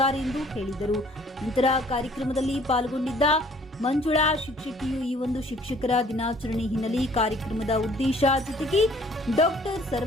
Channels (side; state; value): both; normal; correlation 0.57